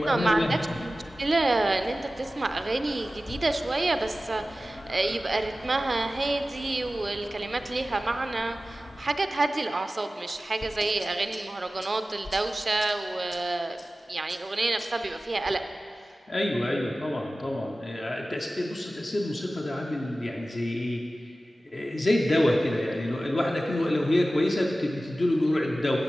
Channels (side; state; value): both; normal; correlation 0.95